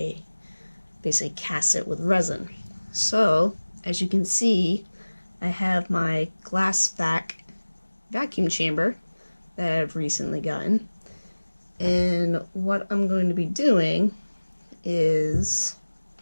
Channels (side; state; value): both; inverted; correlation -1.00